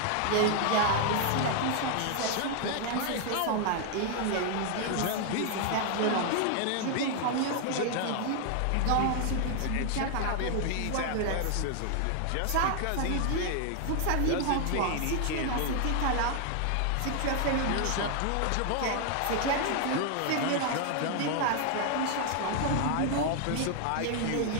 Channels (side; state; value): both; different; correlation 0.00